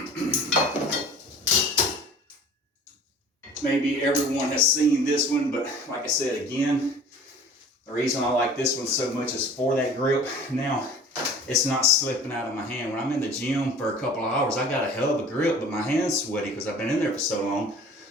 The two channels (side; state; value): both; normal; correlation 0.46